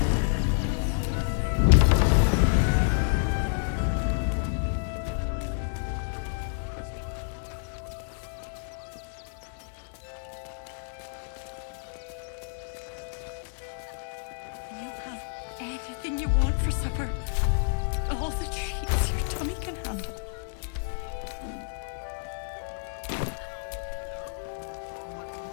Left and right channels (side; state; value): right; silent; digital silence